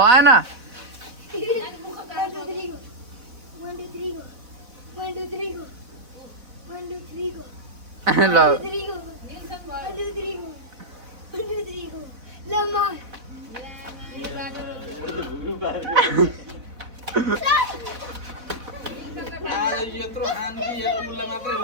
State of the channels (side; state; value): left; late; 4.0 ms